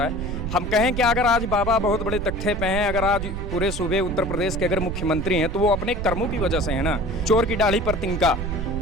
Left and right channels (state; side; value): noise; right; rumble, 5 dB below the sound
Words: है। हम कहें कि अगर आज बाबा बहुत बड़े तख्ते पे हैं, अगर आज पूरे सूबे उत्तर प्रदेश के अगर मुख्यमंत्री हैं तो वो अपने कर्मों की वजह से है ना। चोर की दाढ़ी पर तिनका,